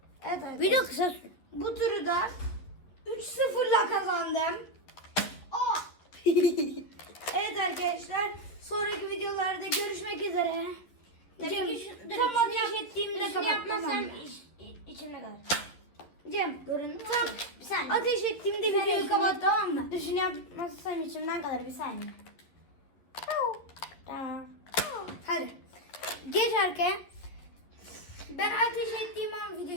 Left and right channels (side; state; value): right; late; 11 ms